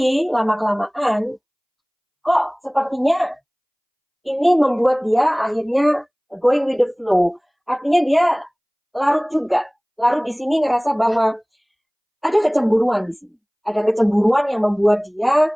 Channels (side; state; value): both; identical; correlation 1.00